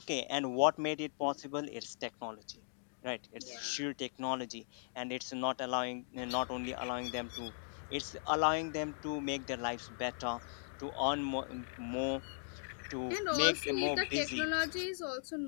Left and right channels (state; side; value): silent; right; digital silence